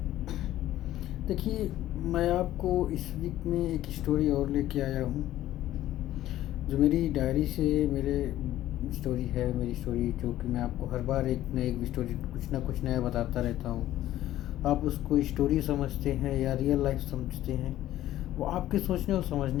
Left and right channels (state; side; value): quieter; right; 13.8 dB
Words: देखिए, मैं आपको इस वीक में एक स्टोरी और लेके आया हूँ जो मेरी डायरी से मेरे स्टोरी है। मेरी स्टोरी जो कि मैं आपको हर बार एक न एक स्टोरी कुछ ना कुछ नया बताता रहता हूँ। आप उसको स्टोरी समझते हैं या रियल लाइफ समझते हैं, वो आपके सोचने और